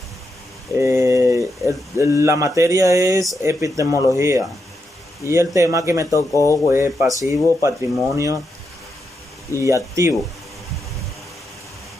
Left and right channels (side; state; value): both; normal; correlation 0.84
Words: La materia es epistemología y el tema que me tocó fue pasivo, patrimonio y activo.